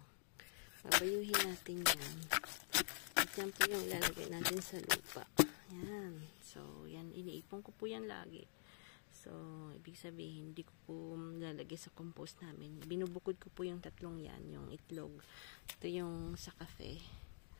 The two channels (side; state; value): right; silent; digital silence